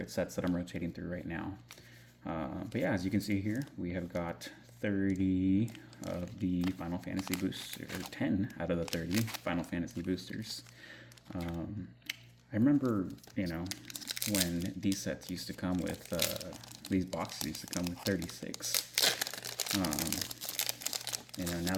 sets that I'm rotating through right now. But yeah, as you can see here, we have got 30 of the Final Fantasy boosters, or 10 out of the 30 Final Fantasy boosters. I remember, when these sets used to come with, these boxes used to come with 36. Now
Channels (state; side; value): identical; both; correlation 1.00